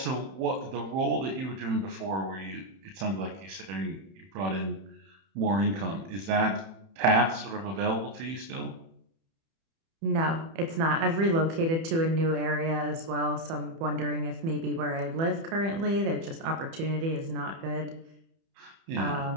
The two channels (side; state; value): left; late; 30 ms